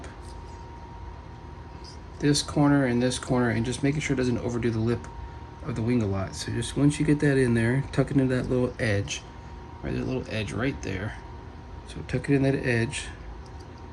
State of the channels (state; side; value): identical; both; correlation 1.00